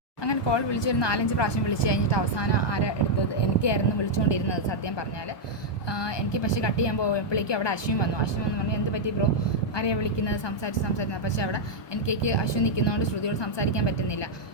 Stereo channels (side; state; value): right; late; 1.2 ms